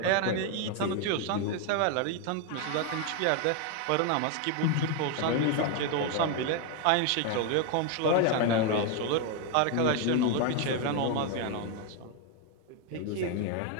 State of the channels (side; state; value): both; different; correlation 0.01